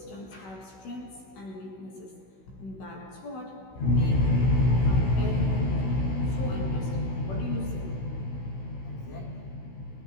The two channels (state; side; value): late; right; 16 ms